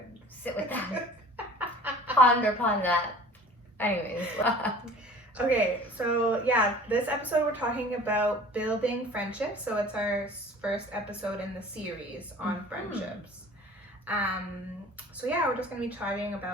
Sit with that. Ponder upon that. Anyways. Okay, so this episode we're talking about building friendships. So it's our first episode in the series on friendships. So we're just gonna be talking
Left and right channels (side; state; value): both; normal; correlation 0.46